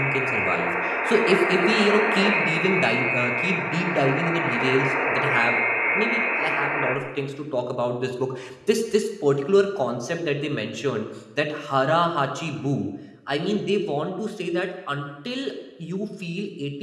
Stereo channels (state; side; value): identical; both; correlation 1.00